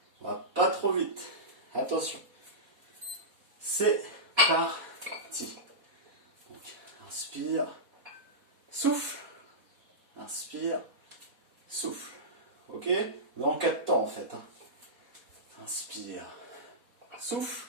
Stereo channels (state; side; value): late; left; 4.1 ms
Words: On va pas trop vite. Attention. C'est parti. Donc, inspire, souffle, inspire, souffle. Ok? On est en 4 temps en fait. Hein. Inspire, souffle,